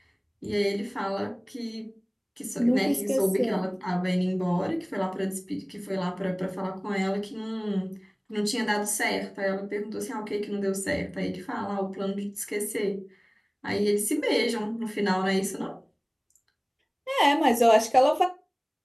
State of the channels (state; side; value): identical; both; correlation 1.00